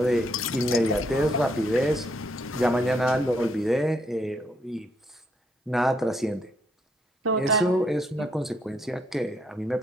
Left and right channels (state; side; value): normal; both; correlation 0.73